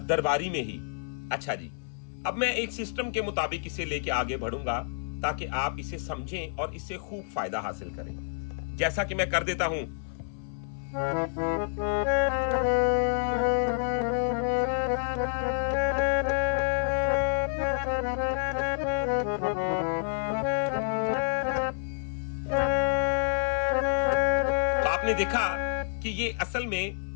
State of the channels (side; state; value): right; silent; 59 dB below the other